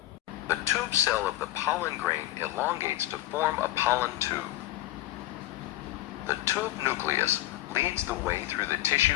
The tube cell of the pollen grain elongates to form a pollen tube. The tube nucleus leads the way through the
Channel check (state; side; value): quieter; right; 15.5 dB